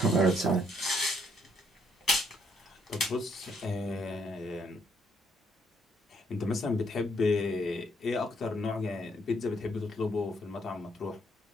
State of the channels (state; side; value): normal; both; correlation 0.71